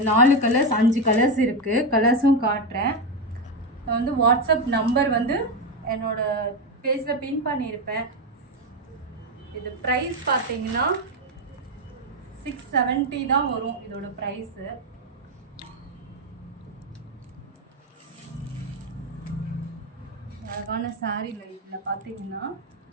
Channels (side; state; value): both; normal; correlation 0.09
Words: 4 கலர்ஸ் 5 கலர்ஸ் இருக்குது. கலர்ஸும் காட்டுறேன். நான் வந்து வாட்ஸ்அப் நம்பர் வந்து என்னோடய பேஜில் பின் பண்ணியிருப்பேன். இது ப்ரைஸ் பார்த்தீங்கன்னா 670 தான் வரும் இதோட ப்ரைஸு. அழகான சாரீல இதில் பார்த்தீங்கன்னா